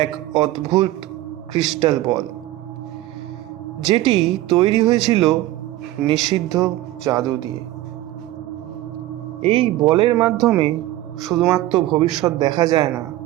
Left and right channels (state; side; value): quieter; left; 15.8 dB